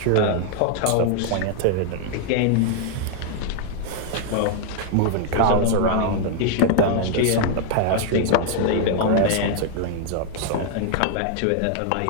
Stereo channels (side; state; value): both; different; correlation 0.00